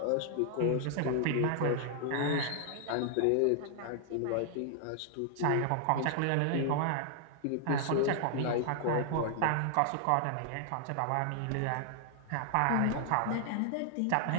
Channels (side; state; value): both; different; correlation 0.00